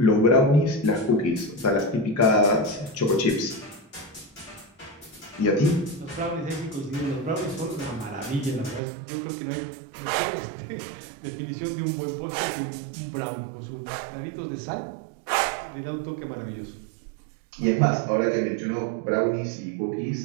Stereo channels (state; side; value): drops out; left; at 8.8 s